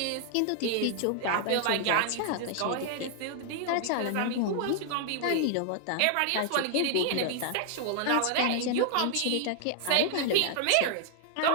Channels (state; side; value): different; both; correlation 0.00